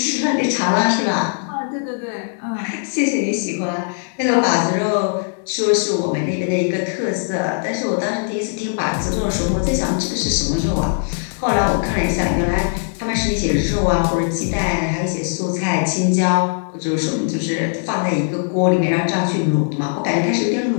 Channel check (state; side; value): silent; right; digital silence